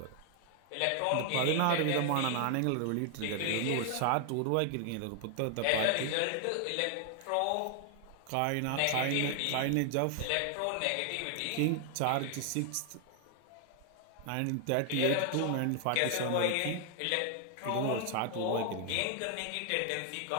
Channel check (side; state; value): both; different; correlation 0.00